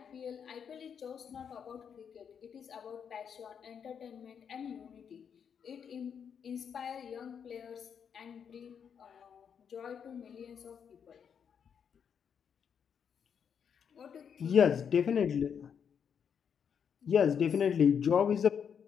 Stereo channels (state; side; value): quieter; right; 7.4 dB